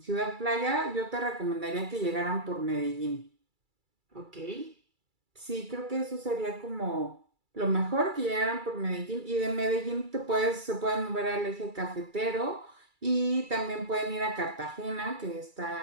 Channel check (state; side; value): late; left; 2.3 ms